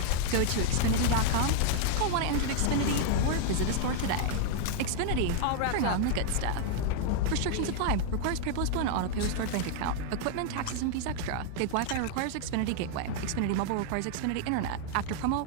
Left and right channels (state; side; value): different; both; correlation 0.00